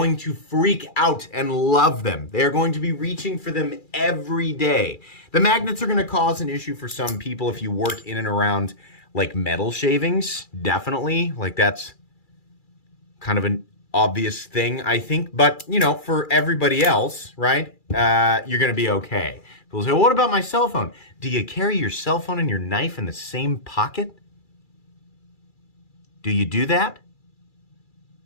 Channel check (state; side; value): late; right; 2.4 ms